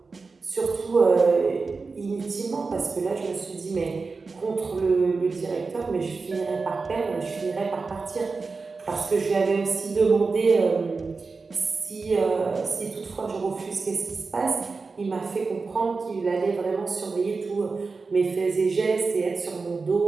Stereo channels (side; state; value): left; quieter; 4.3 dB